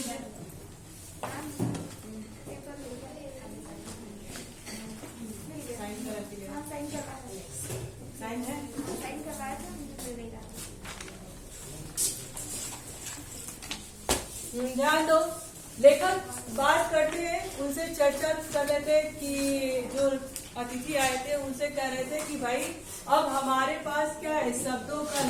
साइन है। ध्यान दो। लेखक बात करते हैं, उनसे चर्चा कर रहे थे कि जो अतिथि आए थे उनसे कह रहे थे कि भाई अब हमारे पास क्या है, शब्दों का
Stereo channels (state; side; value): identical; both; correlation 1.00